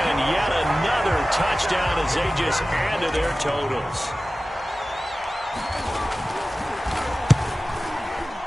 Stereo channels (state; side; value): normal; both; correlation 0.96